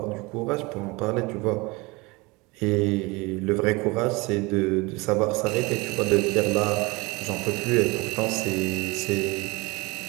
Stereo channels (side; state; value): left; quieter; 24.9 dB